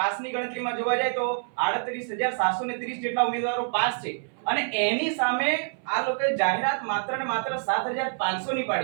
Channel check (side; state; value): left; silent; 59 dB below the other